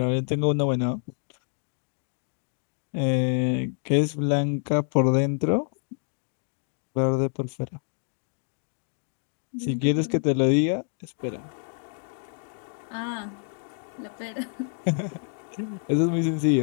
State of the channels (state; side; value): silent; right; 60 dB below the other